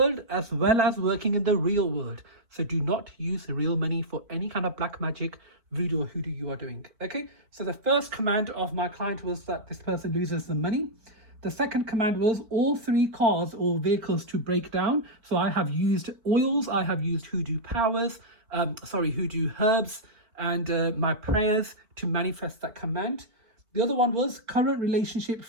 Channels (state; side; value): late; left; 4.7 ms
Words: as well as working in the real world. So do not use real money for any kind of black magic, voodoo or hoodoo you are doing. Okay, so the first command of my client was that this person loses the money. The second command was all 3 cars or vehicles to break down. So I have used oils, I have used hoodoo powers, hoodoo herbs and my prayers to manifest that command. The other one was current relationship,